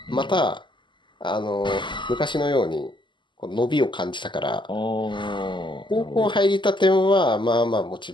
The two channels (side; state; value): right; late; 0.23 ms